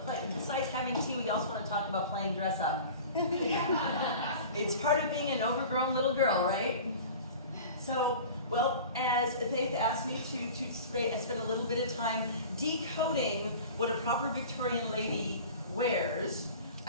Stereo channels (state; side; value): inverted; both; correlation -0.39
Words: besides having tea, we also want to talk about playing dress up. It's part of being an overgrown little girl, right? So, well, as Faith asked me to spend a little bit of time decoding what a proper Victorian lady wears,